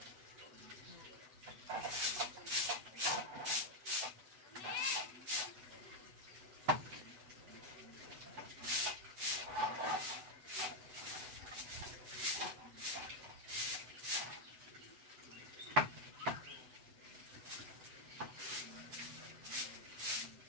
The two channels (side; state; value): left; late; 8.0 ms